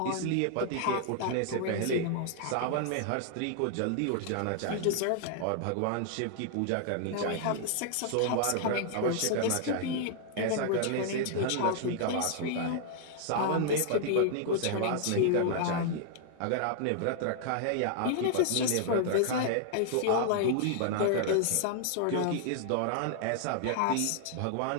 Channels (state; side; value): different; both; correlation 0.00